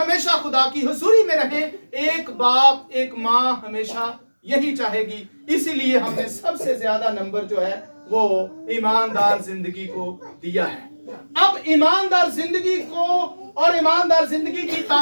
खुदा की हुजूरी में रहें। एक बाप एक माँ हमेशा यही चाहेगी। इसीलिए हमने सबसे ज्यादा नंबर जो है वो ईमानदार जिंदगी को दिया है। अब ईमानदार जिंदगी को और ईमानदार जिंदगी की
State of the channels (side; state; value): both; inverted; correlation -1.00